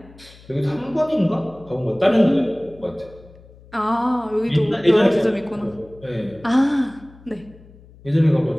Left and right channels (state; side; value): noise; left; hum, 23 dB below the sound